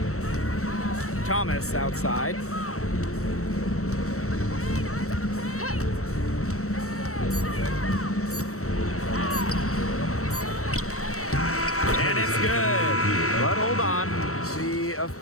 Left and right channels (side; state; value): right; late; 0.64 ms